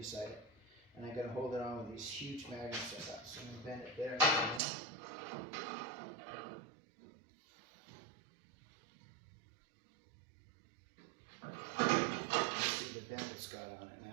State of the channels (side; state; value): left; drops out; at 4.6 s